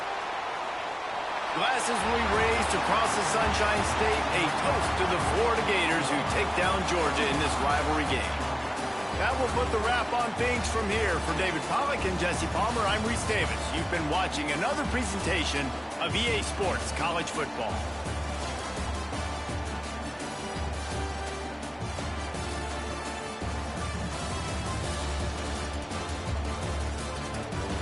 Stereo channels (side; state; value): both; identical; correlation 1.00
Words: Glasses will be raised across the Sunshine State, a toast to the Florida Gators who take down Georgia in this rivalry game. That will put the wrap on things from here. For David Pollack and Jesse Palmer, I'm Reese Davis. You've been watching another presentation of EA Sports College Football.